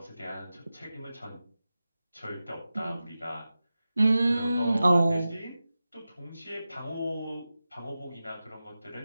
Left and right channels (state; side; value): inverted; both; correlation -0.94